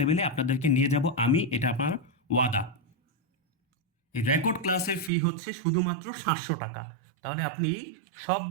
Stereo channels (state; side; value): drops out; left; at 5.1 s